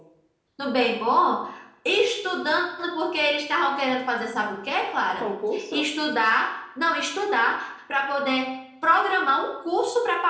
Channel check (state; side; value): identical; both; correlation 1.00